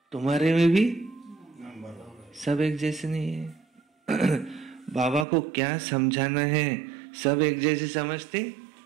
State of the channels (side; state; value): left; drops out; at 5.2 s